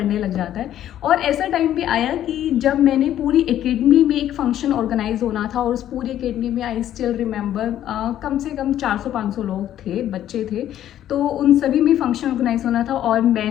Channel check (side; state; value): right; quieter; 11.6 dB